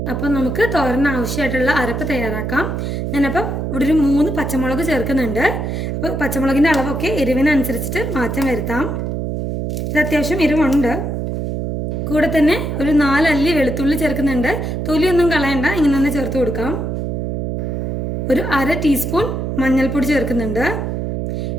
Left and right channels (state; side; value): noise; right; hum, 2 dB below the sound